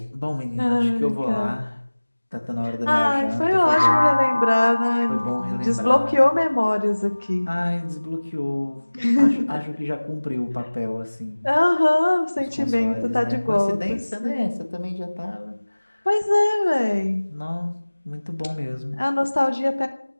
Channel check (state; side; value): inverted; both; correlation -1.00